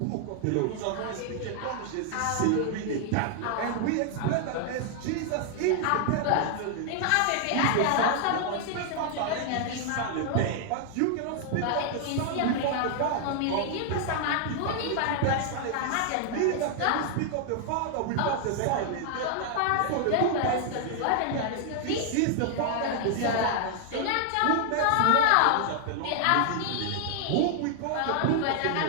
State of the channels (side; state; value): both; different; correlation 0.00